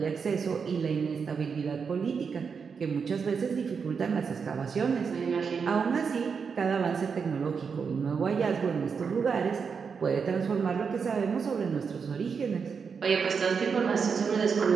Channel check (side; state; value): left; quieter; 5.9 dB